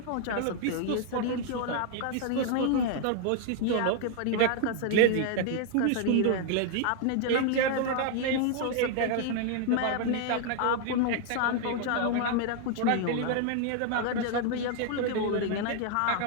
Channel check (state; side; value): different; both; correlation 0.00